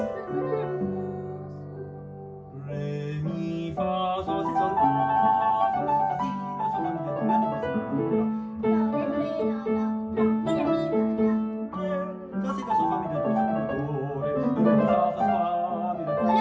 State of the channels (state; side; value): identical; both; correlation 1.00